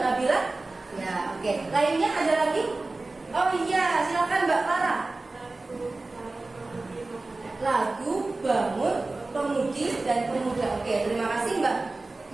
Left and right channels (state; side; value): quieter; left; 3.2 dB